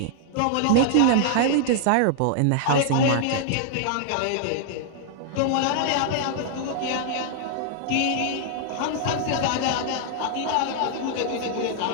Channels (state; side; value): different; both; correlation -0.01